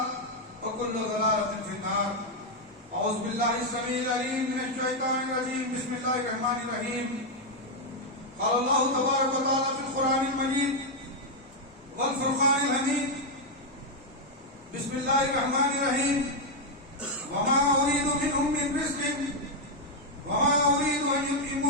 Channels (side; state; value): both; normal; correlation 0.01